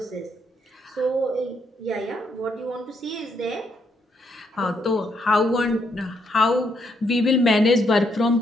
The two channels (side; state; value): both; normal; correlation 0.75